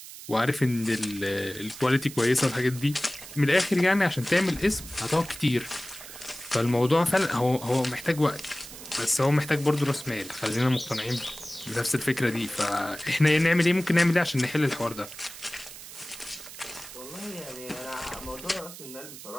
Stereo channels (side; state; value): right; noise; hiss, 14 dB below the sound